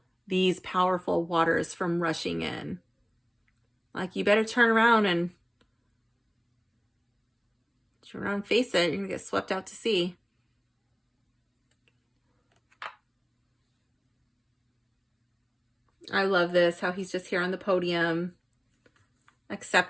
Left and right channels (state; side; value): identical; both; correlation 1.00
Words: these powerful waters from rushing in? Like, you better turn around and face it. You're gonna get swept out to sea. I love this, how he's just here on the podium,